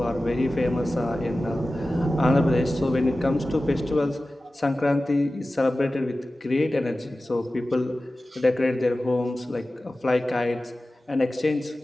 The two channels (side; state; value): both; normal; correlation 0.96